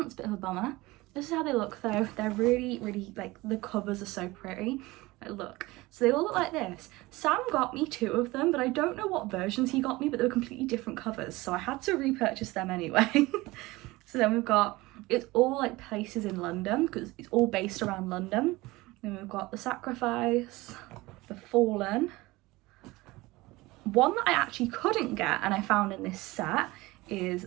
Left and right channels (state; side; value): quieter; left; 20.7 dB